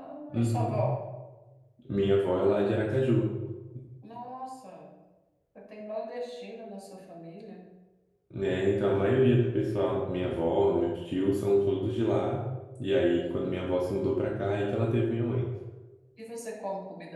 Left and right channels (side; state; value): both; identical; correlation 1.00